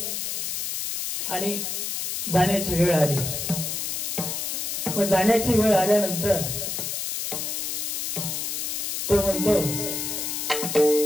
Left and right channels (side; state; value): left; noise; hiss, 2 dB below the sound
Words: आणि जाण्याची वेळ आली. मग जाण्याची वेळ आल्यानंतर तो म्हणतो